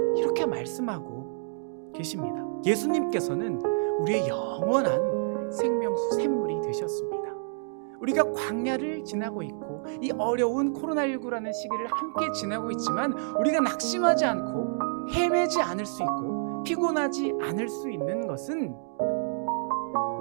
이렇게 말씀하고 계십니다. 예수님께서는 우리의 영원한 생명수 샘물이 되셨습니다. 우리가 광야를 지나고 있고 이 어려운 코로나19라는 시기를 함께 지나고 있지만 우리가 낙심하지 않고 헤매지 않을 수 있고 피곤하지 않을 수 있는 것은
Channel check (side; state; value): left; silent; digital silence